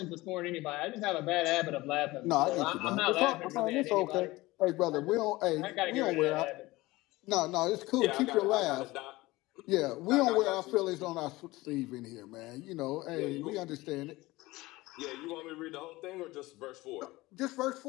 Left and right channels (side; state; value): right; quieter; 19.9 dB